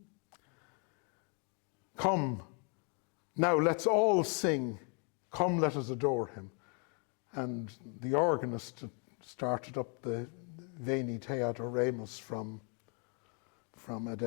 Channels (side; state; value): right; quieter; 38.1 dB